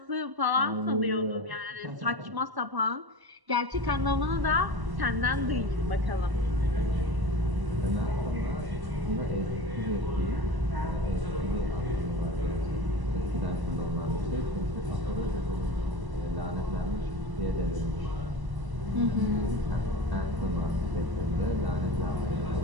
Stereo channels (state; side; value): late; left; 1.1 ms